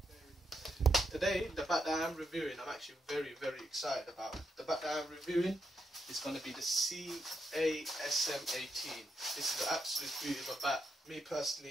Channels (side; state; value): both; normal; correlation 0.82